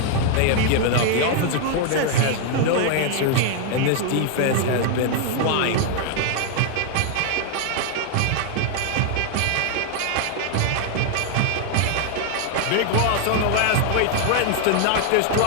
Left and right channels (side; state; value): both; different; correlation 0.00